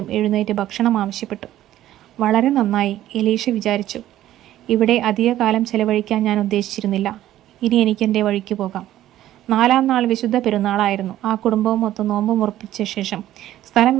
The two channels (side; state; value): left; quieter; 13.4 dB